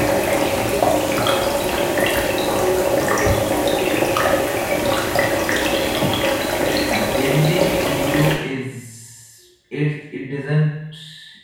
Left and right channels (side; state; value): both; identical; correlation 1.00